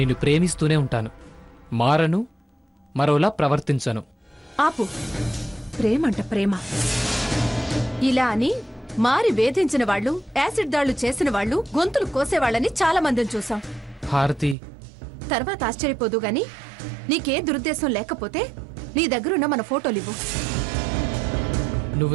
ప్రేమిస్తూనే ఉంటాను. మారను, మరోలా ప్రవర్తించను. ఆపు. ప్రేమంట ప్రేమ. ఇలా అని మారి వేధించిన వాళ్ళు, యాసిడ్ దాళ్లు చేసిన వాళ్ళు, గొంతులు కోసేవాళ్ళని చాలా మందిని చూసాం. హారతి, తర్వాత ఆశ్చర్యపోదు గాని నీకే దురుద్దేశం లేకపోతే నీ దగ్గరున్న మన ఫోటోలివ్వు.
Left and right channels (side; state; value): left; drops out; at 14.6 s